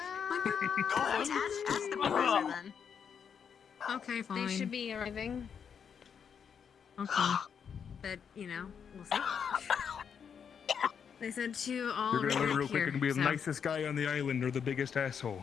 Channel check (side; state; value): right; quieter; 7.2 dB